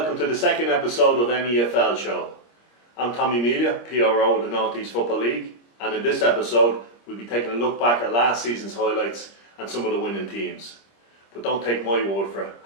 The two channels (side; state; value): right; late; 25 ms